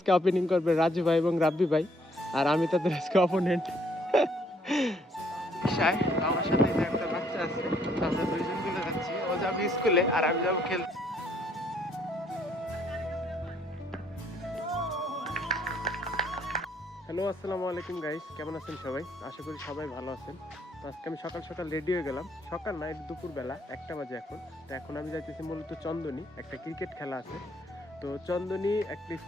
ওপেনিং করবে রাজু ভাই এবং রাব্বি ভাই, আর আমি তাদের আজকে অপোনেন্ট। আমার সাথে যে একটা বাচ্চা আছে, আমরা দুইজন মিলে যাচ্ছি। ও যাবে স্কুলে আর আমি যাবো খেলতে। হ্যালো, আসসালামু আলাইকুম গাইস, কেমন আছেন সবাই? আশা করি সবাই ভালো আছেন। তো আজকে আমি সকাল সকাল রেডি হয়ে গেলাম। সকাল না, দুপুরবেলা 1টা বাজে এখন। তো এখন আমি যাইতেছি মূলত চন্দনী, একটা ক্রিকেট খেলা আছে। তো চন্দনী একটা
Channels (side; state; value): both; normal; correlation 0.66